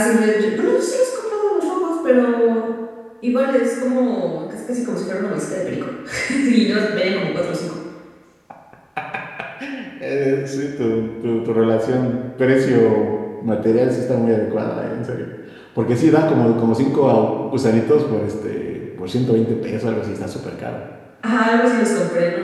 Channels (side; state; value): both; identical; correlation 1.00